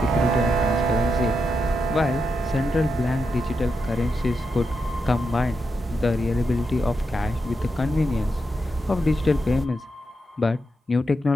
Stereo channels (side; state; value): both; normal; correlation 0.85